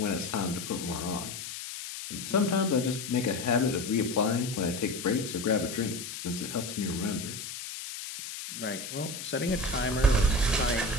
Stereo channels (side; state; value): left; noise; hiss, 8 dB below the sound